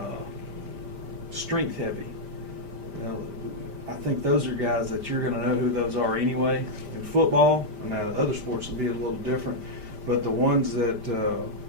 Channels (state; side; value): late; left; 5.1 ms